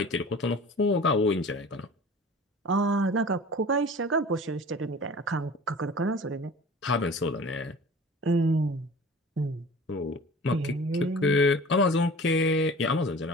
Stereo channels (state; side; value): normal; both; correlation 0.41